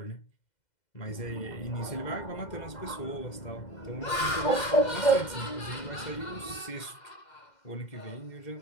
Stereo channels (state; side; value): late; right; 2.0 ms